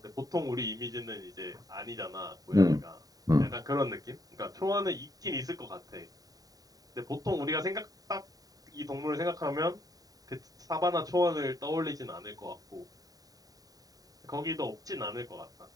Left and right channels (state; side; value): late; left; 0.18 ms